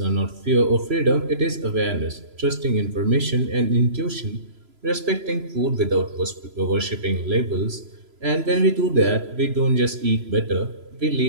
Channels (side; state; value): left; late; 3.0 ms